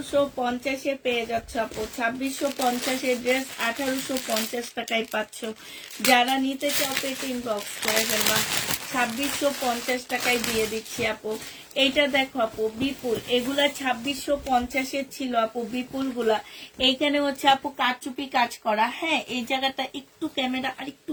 পেয়ে যাচ্ছ আপু। 2650-এর ড্রেস 1850 টাকায় পাচ্ছ। যারা নিতে চাও এটা ইনবক্স করে ফেলবা। 2650 টাকায় দিয়ে দিচ্ছি আপু। এইটা দেখো আপু বিপুল, এগুলা 2650-এর ছিল আপু বিপুল গুলা। এইখানে হচ্ছে আপু কারচুপি কাজ করা। হ্যাঁ, এই জায়গাটা একটু ক্যামেরা আর একটু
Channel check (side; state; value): both; identical; correlation 1.00